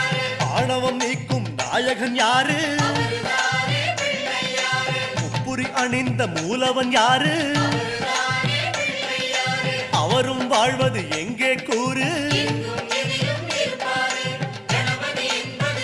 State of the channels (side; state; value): both; identical; correlation 1.00